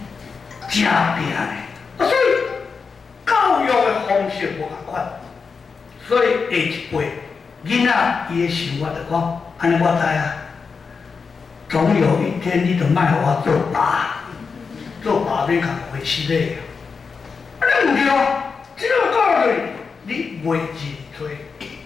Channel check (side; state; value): right; quieter; 5.2 dB